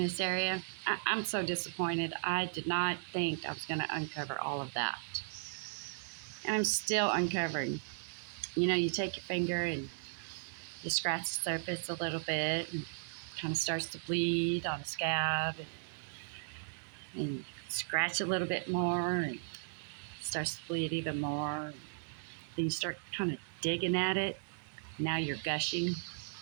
area. I'm so disappointed. I did not think I was going to uncover all of that. And I'm still uncovering. You know, you take your finger and you scratch the surface a little bit and kind of starts to bleed on a scab and scratch a little bit more and starts to bleed even more. Then you start kind of digging at it. Now you're gushing.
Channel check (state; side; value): silent; left; digital silence